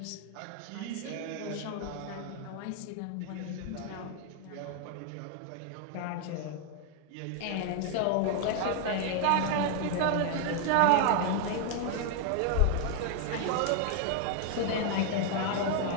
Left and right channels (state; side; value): different; both; correlation 0.00